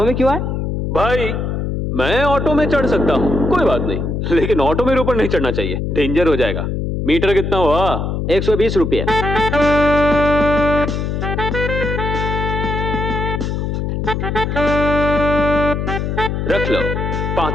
में क्यों आए? भाई मैं ऑटो में चढ़ सकता हूँ, कोई बात नहीं, लेकिन ऑटो मेरे ऊपर नहीं चढ़ना चाहिए, डेंजर हो जाएगा। मीटर कितना हुआ? 120 रुपये। रख लो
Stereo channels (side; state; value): left; noise; hum, 2 dB below the sound